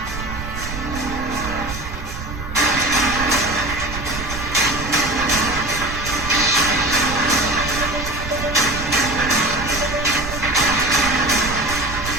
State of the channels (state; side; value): noise; right; rumble, 8 dB below the sound